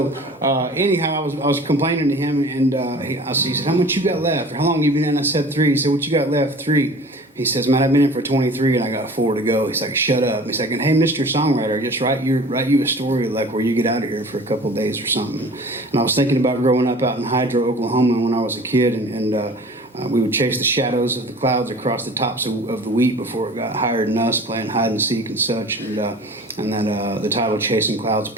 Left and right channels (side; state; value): both; normal; correlation 0.43